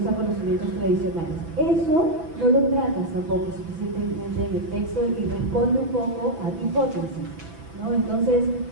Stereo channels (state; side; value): late; left; 6.0 ms